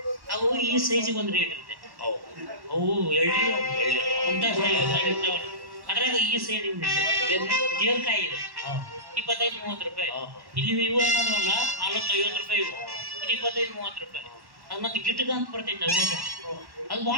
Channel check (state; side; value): late; left; 1.1 ms